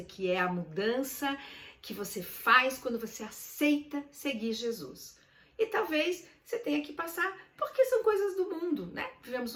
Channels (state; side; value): identical; both; correlation 1.00